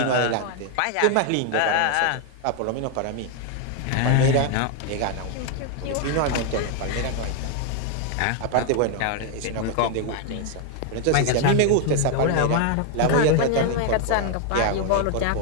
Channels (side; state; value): both; different; correlation 0.00